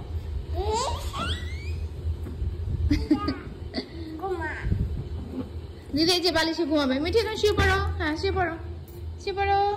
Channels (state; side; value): identical; both; correlation 1.00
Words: দিদি এই যে বালিশে ঘুমাবে। মিঠি এখন শুয়ে পড়ো। হ্যাঁ শুয়ে পড়ো, শুয়ে পড়ো,